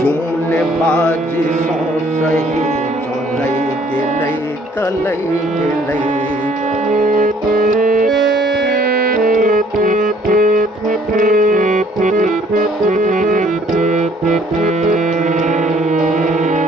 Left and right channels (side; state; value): both; normal; correlation 0.60